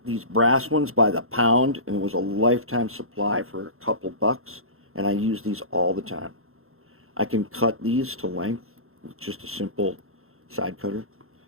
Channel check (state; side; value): late; left; 0.62 ms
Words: these brass ones by the pound, and it was a lifetime supply for a couple bucks, and I use these all the time. I can cut these to length with just a simple side cutter,